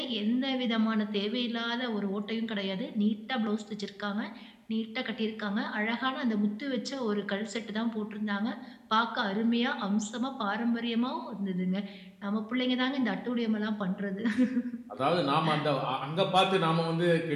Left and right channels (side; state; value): both; identical; correlation 1.00